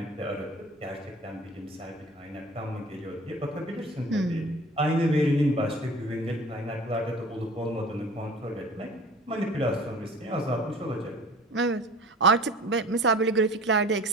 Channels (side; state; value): both; normal; correlation 0.44